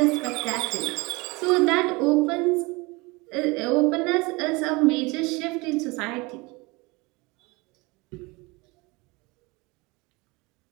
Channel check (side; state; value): left; quieter; 25.2 dB